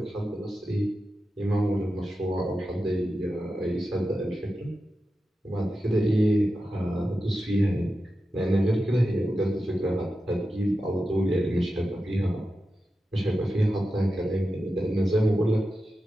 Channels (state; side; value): normal; both; correlation 0.91